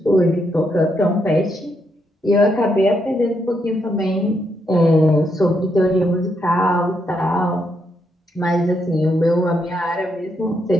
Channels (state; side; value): normal; both; correlation 0.79